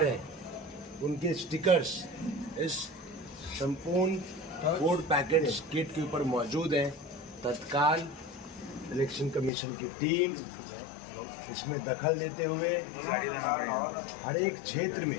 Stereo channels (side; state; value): right; drops out; at 9.5 s